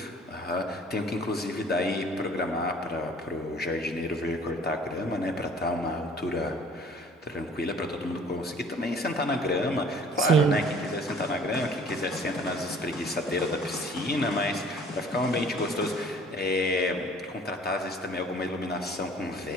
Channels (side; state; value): both; normal; correlation 0.52